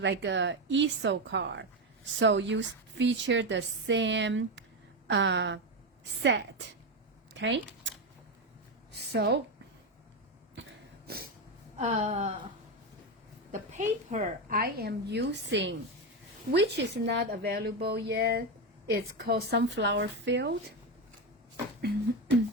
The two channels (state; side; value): normal; both; correlation 0.12